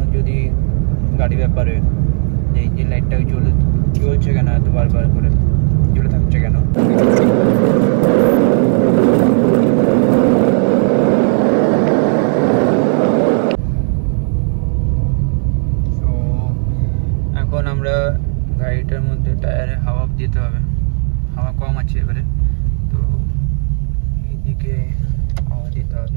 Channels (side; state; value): left; silent; 58 dB below the other